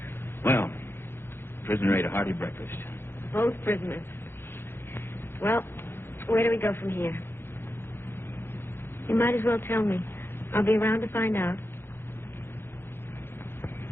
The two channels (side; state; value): right; late; 0.11 ms